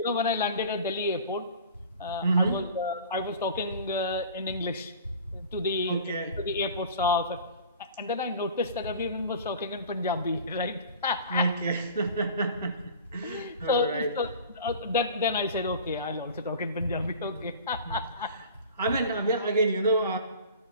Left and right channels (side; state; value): both; inverted; correlation -0.41